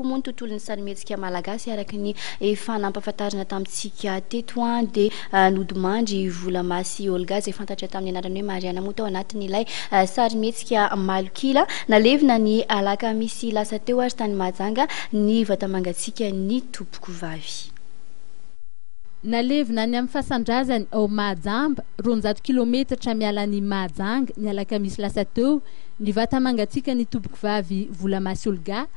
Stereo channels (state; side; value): silent; right; 63 dB below the other